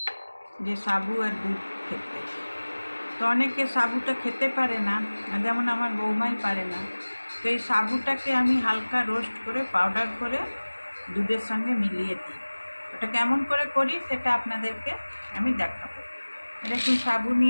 যে সাবু আর দুধ খেতে। তো অনেকে সাবুটা খেতে পারে না, যেমন আমার বৌমাই পারে না। তো এই সাবুটাকে আমি হালকা রোস্ট করে পাউডার করে দুধের সঙ্গে মিলিয়ে দিই। ওটা কেমন করে করি সেটা আপনাদেরকে আমি দেখাবো। দেখুন, সাবু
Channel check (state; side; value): inverted; both; correlation -1.00